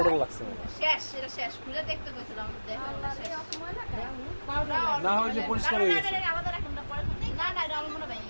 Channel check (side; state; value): both; inverted; correlation -1.00